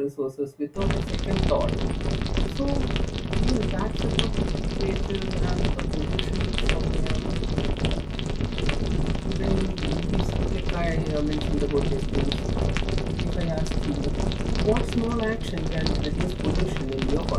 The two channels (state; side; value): identical; both; correlation 1.00